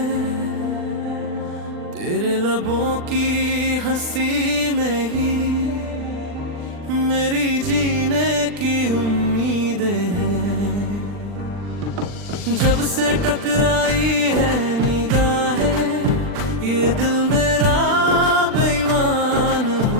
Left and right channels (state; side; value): late; left; 40 ms